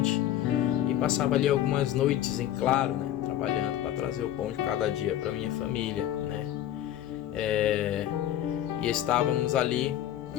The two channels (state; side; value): quieter; right; 12.0 dB